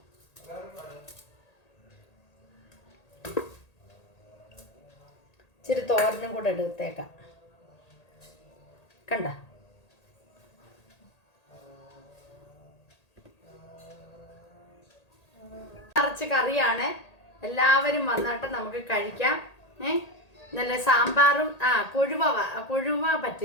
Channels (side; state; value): right; late; 1.8 ms